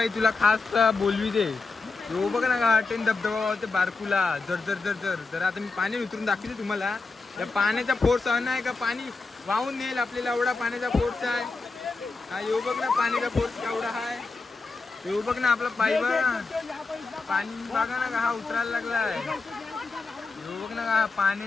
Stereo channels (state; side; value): quieter; right; 3.9 dB